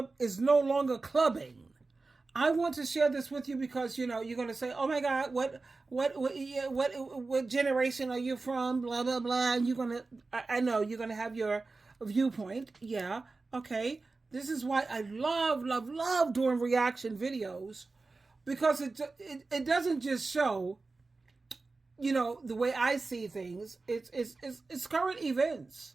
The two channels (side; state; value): left; quieter; 3.7 dB